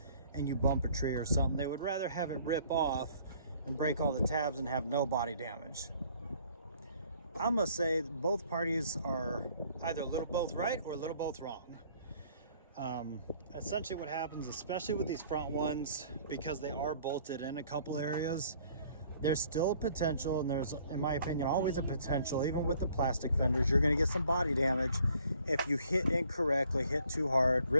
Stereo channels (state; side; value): inverted; both; correlation -0.59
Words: and you bump a tree or something, they would rather have it rip off and break all the tabs and have no body damage. I'm gonna say both parties are either a little both right or a little both wrong. Essentially what happens, especially with these front ones, because they are bolted in a couple areas, there's still a potential, and there's, in my opinion, always a potential, even with the plastic fenders, you're gonna get some body damage if you hit incorrectly, hit too hard,